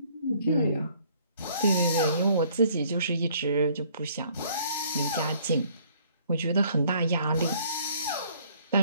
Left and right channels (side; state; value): both; inverted; correlation -0.61